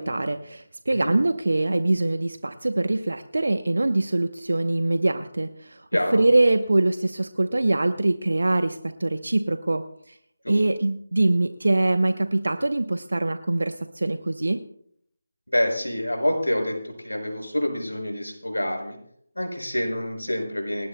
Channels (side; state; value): both; inverted; correlation -0.99